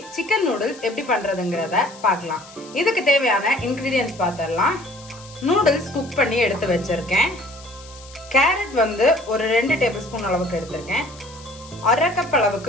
chicken noodles எப்படி பண்றதுங்கறத பார்க்கலாம். இதுக்கு தேவையான இன்கிரிடியன்ட்ஸ் பார்த்தறலாம். நூடுல்ஸ் குக் பண்ணி எடுத்து வச்சிருக்கேன். கேரட் வந்து ஒரு 2 டேபிள்ஸ்பூன் அளவுக்கு எடுத்துர்க்கேன். 1/2 கப்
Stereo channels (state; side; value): noise; left; hiss, 20 dB below the sound